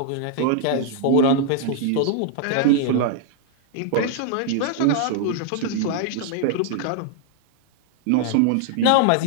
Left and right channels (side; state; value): both; different; correlation 0.00